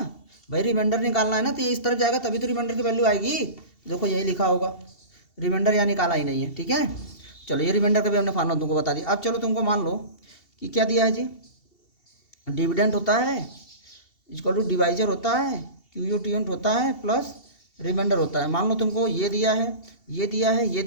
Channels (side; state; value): right; late; 2.7 ms